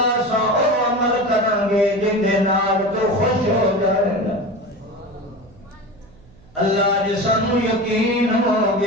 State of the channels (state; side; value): noise; right; hum, 27 dB below the sound